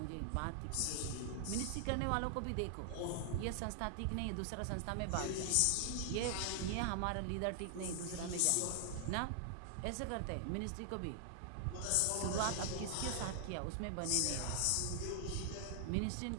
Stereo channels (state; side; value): different; both; correlation 0.00